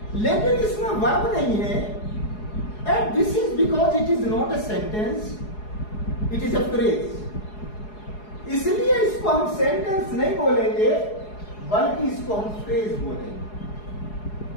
लेकिन इसमें वर्ब नहीं है। And this is because it is not a sentence, it is a phrase. इसलिए इसको हम सेंटेंस नहीं बोलेंगे, बल्कि इसको हम फ्रेज बोलेंगे।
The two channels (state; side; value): late; right; 4.8 ms